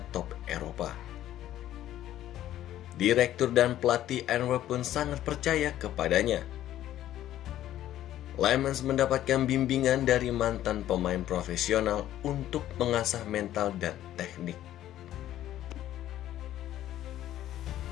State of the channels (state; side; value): quieter; right; 12.8 dB